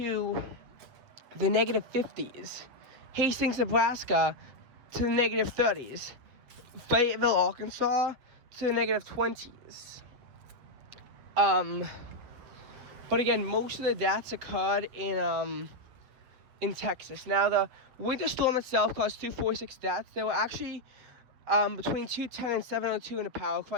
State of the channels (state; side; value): late; left; 7.8 ms